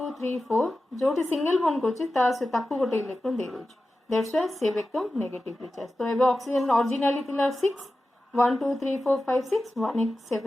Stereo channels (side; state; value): both; normal; correlation 0.94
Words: 3 4 जोटी सिंगल बॉन्ड करछि ता से ताकू गोटे इलेक्ट्रॉन दे दोछि दैट्स व्हाई से बिकम नेगेटिवली चार्ज तो एबे ऑक्सीजन ओरिजिनली थिला 6 1 2 3 4 5 6 1 8